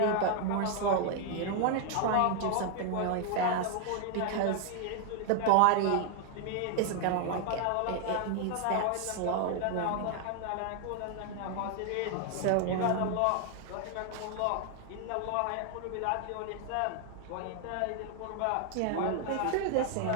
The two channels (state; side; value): different; both; correlation 0.00